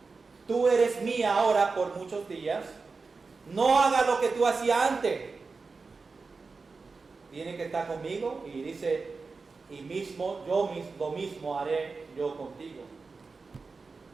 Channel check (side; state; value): left; quieter; 4.3 dB